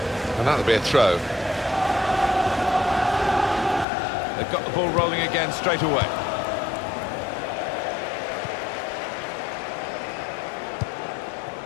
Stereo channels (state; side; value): drops out; right; at 3.9 s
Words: And that'll be a throw. They've got the ball rolling again straight away.